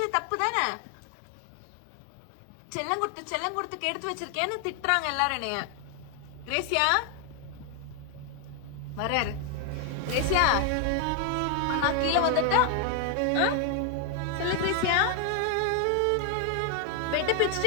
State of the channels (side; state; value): both; different; correlation 0.00